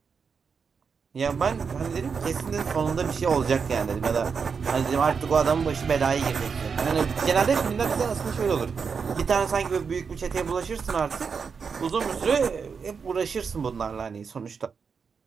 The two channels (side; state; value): left; quieter; 5.8 dB